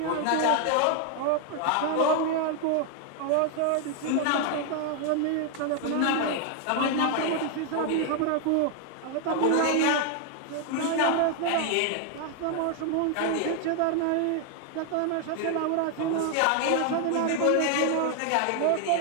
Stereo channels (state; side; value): different; both; correlation 0.00